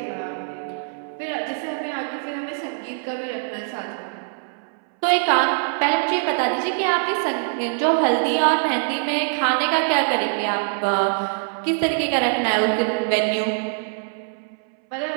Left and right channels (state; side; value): silent; left; 63 dB below the other